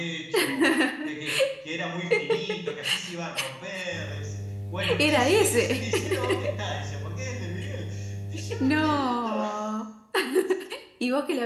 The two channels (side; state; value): both; identical; correlation 1.00